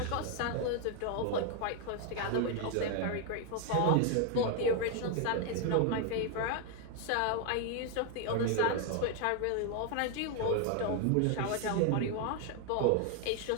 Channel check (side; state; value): both; different; correlation 0.00